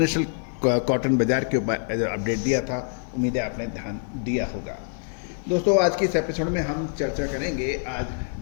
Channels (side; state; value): right; silent; 62 dB below the other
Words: कॉटन बाजार के ऊपर अपडेट दिया था। उम्मीद है आपने ध्यान दिया होगा। दोस्तों आज की इस एपिसोड में हम चर्चा करेंगे आज